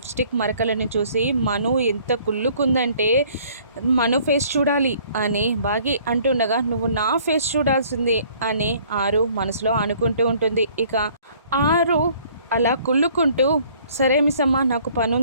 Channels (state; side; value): inverted; both; correlation -0.57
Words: మరకలను చూసి మను ఎంత కుళ్ళుకుందంటే మను ఫేస్ చూడాలి అని బాగి అంటుండగా నువ్వు నా ఫేస్ చూడాల్సింది అని ఆరు మనసులో అనుకుంటూ ఉంటుంది. ఇక ఆరు అలా కుళ్ళుకుంటూ సరే మిస్ అమ్మ నాకు